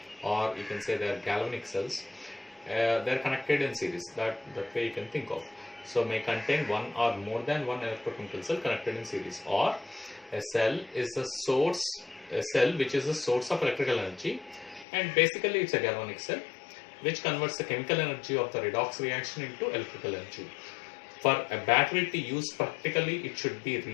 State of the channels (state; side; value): drops out; right; at 14.9 s